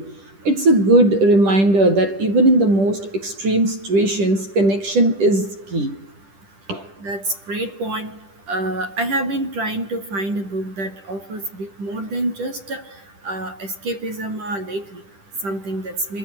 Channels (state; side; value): late; left; 10 ms